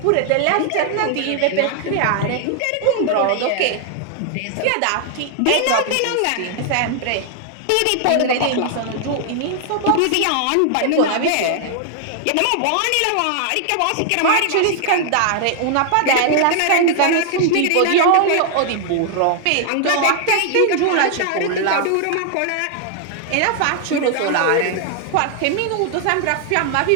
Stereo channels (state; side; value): different; both; correlation 0.00